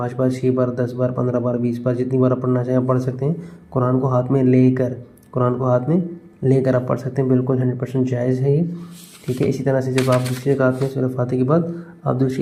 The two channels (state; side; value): identical; both; correlation 1.00